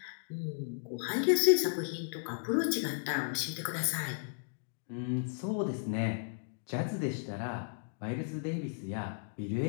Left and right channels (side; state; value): right; silent; digital silence